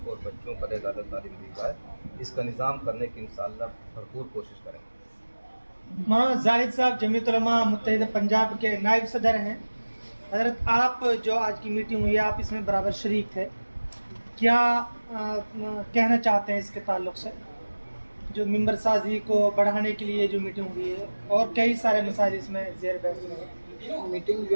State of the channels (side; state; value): both; inverted; correlation -1.00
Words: کو اور بچوں پر زیادہ تعلیم دی جائے، اس کا نظام کرنے کی انشاءاللہ بھرپور کوشش کریں گے۔ مولانا زاہد صاحب جمعیت علماء متحدہ پنجاب کے نائب صدر ہیں۔ حضرت آپ جو آج کی میٹنگ ہوئی ہے آپ اس میں برابر شریک تھے، کیا کہنا چاہتے ہیں اس کے تعلق سے جو ممبر سازی کو بڑھانے کے لیے جو میٹنگ ہوئی ہے اور کئی سارے مسائل اس میں زیر بحث ہیں؟ میٹنگ